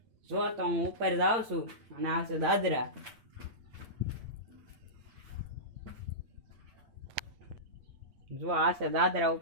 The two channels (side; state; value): left; late; 8.7 ms